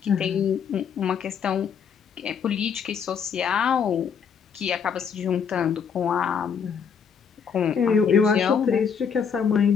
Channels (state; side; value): quieter; right; 6.9 dB